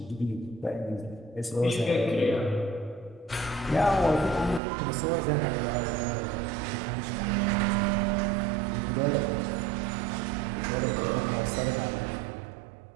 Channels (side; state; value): left; drops out; at 4.6 s